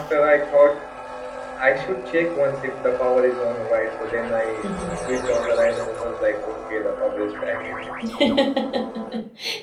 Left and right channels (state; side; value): identical; both; correlation 1.00